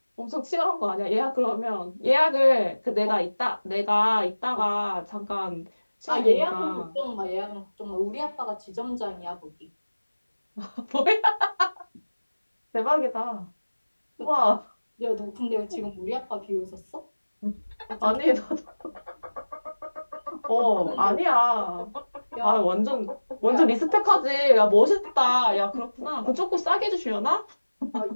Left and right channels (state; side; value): inverted; both; correlation -1.00